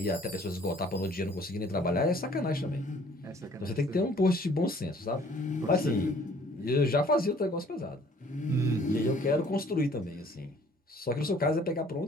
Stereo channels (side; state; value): both; normal; correlation 0.56